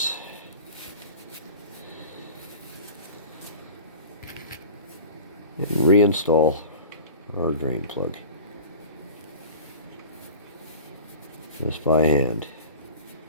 And reinstall our drain plug. Just by hand.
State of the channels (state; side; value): inverted; both; correlation -0.38